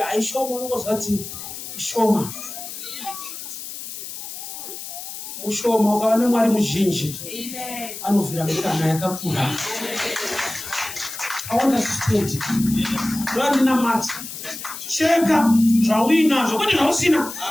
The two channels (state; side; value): noise; left; hiss, 10 dB below the sound